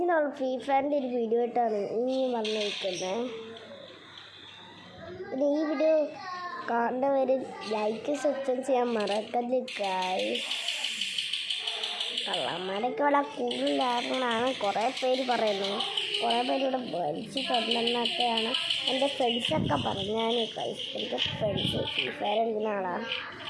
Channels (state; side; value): identical; both; correlation 1.00